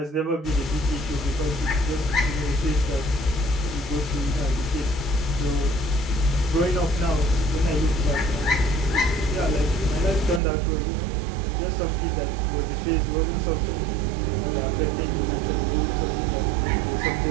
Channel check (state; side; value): drops out; left; at 10.4 s